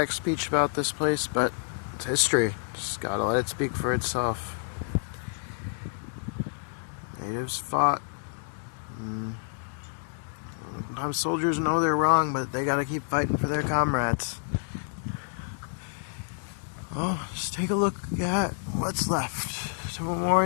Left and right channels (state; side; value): silent; right; digital silence